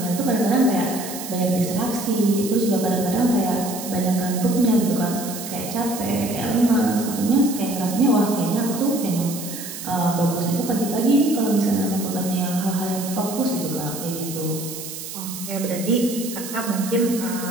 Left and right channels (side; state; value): right; noise; hiss, 9 dB below the sound